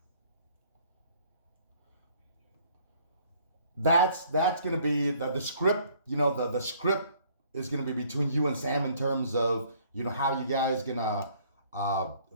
that's gonna be the script. You know, the script is gonna be between you and Sam, in terms of, you know, how you guys gonna uh,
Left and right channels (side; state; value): both; inverted; correlation -0.60